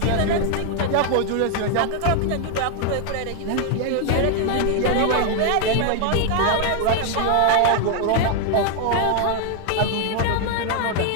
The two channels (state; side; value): different; both; correlation 0.00